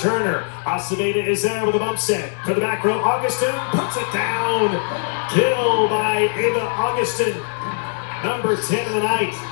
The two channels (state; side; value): silent; right; digital silence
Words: Aceveda is there with a bump set. To the back row, Augustin puts it down. Kill by Ava Augustin. Number 10 of the night.